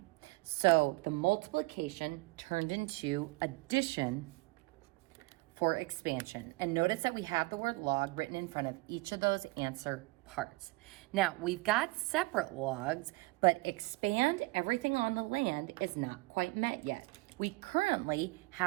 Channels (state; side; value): quieter; left; 23.1 dB